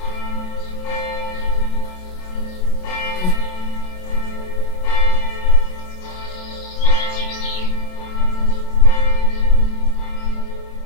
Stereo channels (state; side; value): late; right; 27 ms